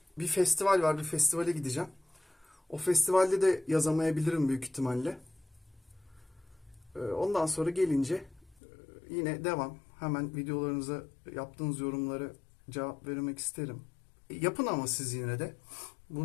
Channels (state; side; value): drops out; right; at 8.6 s